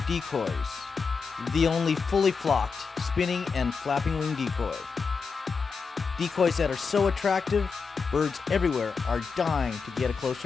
Decoys. The only fully flocked, spinning and flapping wing decoy. Decoys that are so attractive, birds everywhere are dying to get a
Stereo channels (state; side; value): quieter; right; 5.2 dB